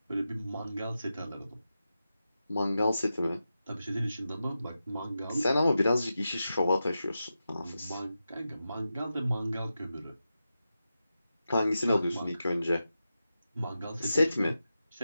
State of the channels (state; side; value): inverted; both; correlation -0.91